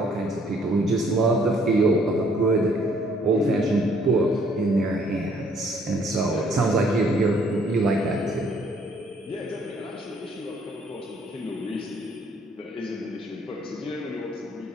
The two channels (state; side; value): normal; both; correlation 0.63